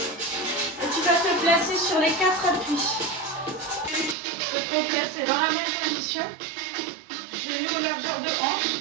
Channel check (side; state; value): left; drops out; at 4.2 s